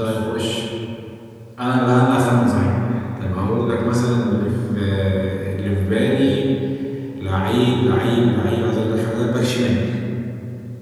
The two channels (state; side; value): identical; both; correlation 1.00